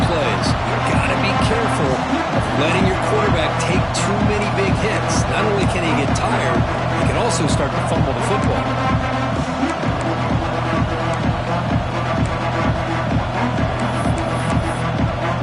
plays. You've got to be careful of letting your quarterback take too many big hits. Not only can he get tired, he can also start to fumble the football.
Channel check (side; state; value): both; identical; correlation 1.00